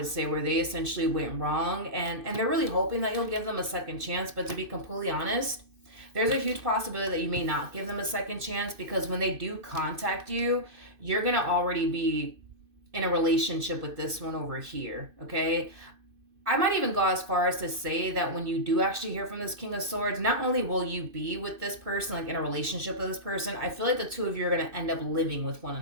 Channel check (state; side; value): late; left; 2.6 ms